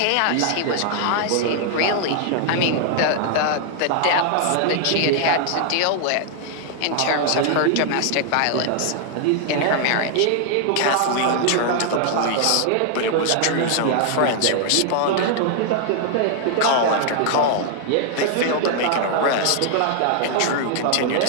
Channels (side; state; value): both; different; correlation 0.00